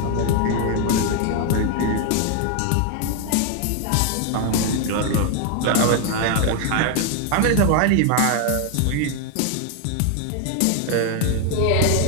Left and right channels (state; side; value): different; both; correlation 0.01